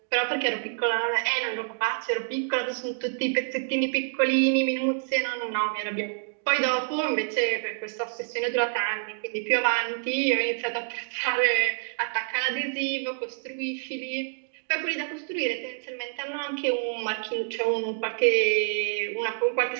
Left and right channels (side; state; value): left; silent; digital silence